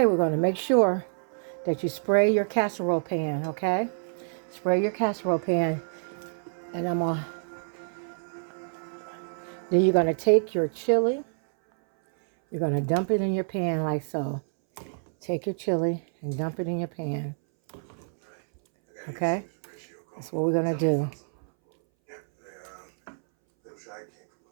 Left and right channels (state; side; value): silent; left; 59 dB below the other